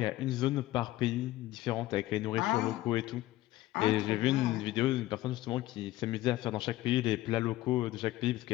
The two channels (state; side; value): quieter; right; 16.3 dB